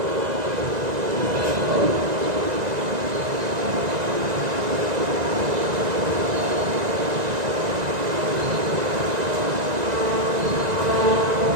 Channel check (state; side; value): late; left; 1.9 ms